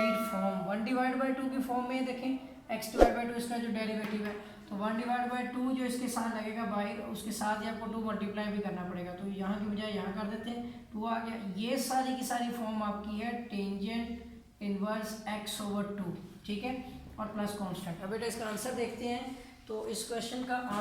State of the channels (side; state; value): both; identical; correlation 1.00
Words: फॉर्म 1 डिवाइड बाई 2 की फॉर्म में देखें x डिवाइड बाई 2 इसका जो डेरिवेटिव है, तो 1 डिवाइड बाई 2 जो इसके साथ लगेगा बाहर, उसके साथ ही आपको 2 मल्टीप्लाई भी करना पड़ेगा, तो यहाँ की बजाय यहाँ कर देते हैं, 2 आ गया। ये सारी की सारी फॉर्म आपकी है टेंजेंट इनवर्स x ओवर 2, ठीक है, और प्लस कांस्टेंट। अब बेटा इसका आंसर देखते हैं, तो इस क्वेश्चन का